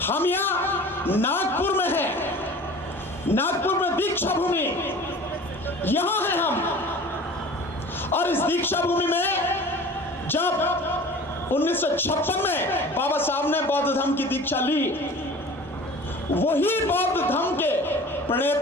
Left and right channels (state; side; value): normal; both; correlation 0.42